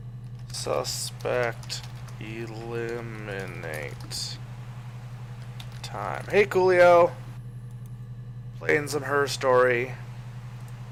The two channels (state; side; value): identical; both; correlation 1.00